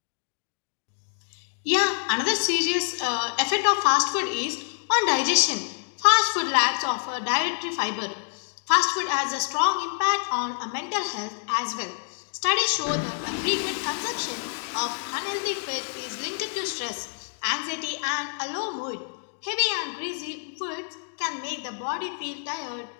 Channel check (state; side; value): silent; right; 60 dB below the other